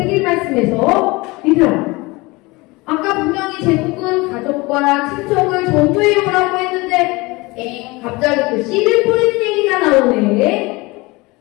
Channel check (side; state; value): right; quieter; 23.6 dB